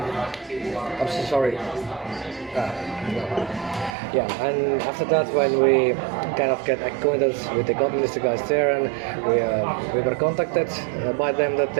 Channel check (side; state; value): left; drops out; at 4.0 s